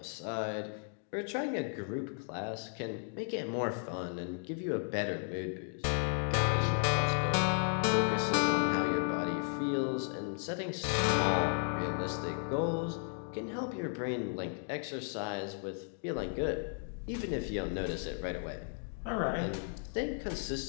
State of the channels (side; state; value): right; silent; 55 dB below the other